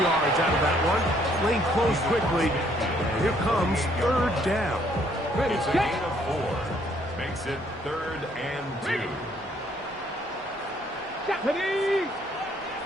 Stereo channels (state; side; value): normal; both; correlation 0.66